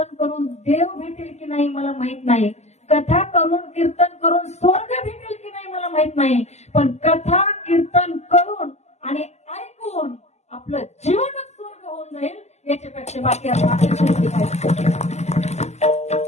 करून देव भेटेल की नाही मला माहित नाही, कथा करून कीर्तन करून स्वर्ग भेटेल की नाही मला माहित नाही, पण कथा कीर्तन करून आणि ऐकून आपलं जीवन करायचे बाकी आपण अपेक्षा केली पाहिजे.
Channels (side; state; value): right; late; 0.33 ms